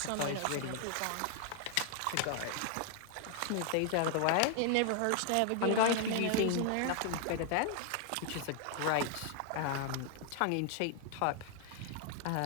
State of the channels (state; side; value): different; both; correlation 0.00